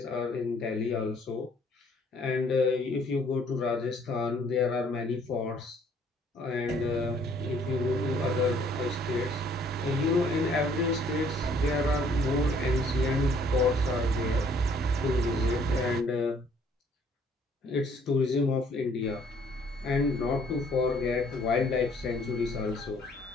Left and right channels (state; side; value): normal; both; correlation 0.61